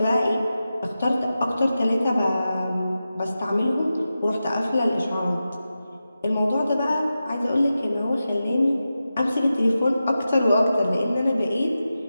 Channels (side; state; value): both; inverted; correlation -0.92